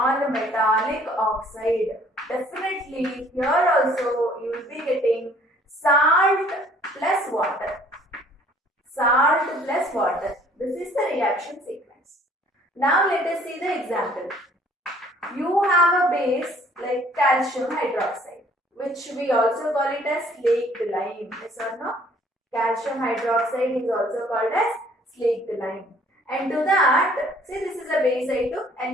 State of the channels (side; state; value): both; normal; correlation 0.57